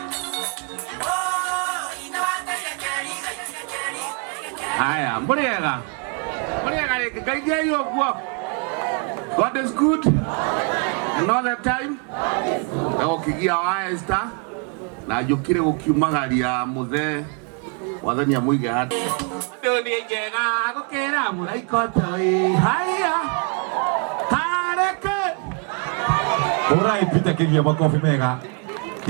Haya, mbona kaidia hiyo kwa God is good and all the time. Na ukigia wa star na jukire gukiumagaria muthe wathani amuige hati. Ndoni njega gukira muraiko toi. Haya. Hareke. Ora ipita kigia makofi mega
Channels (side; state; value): left; quieter; 36.6 dB